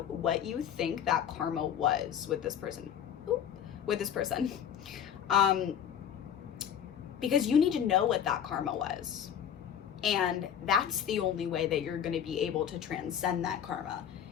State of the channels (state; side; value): quieter; right; 8.9 dB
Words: what you think that karma was with this person. Because you need to know what that karma was. And that's the only way that you're going to be able to transcend that karma,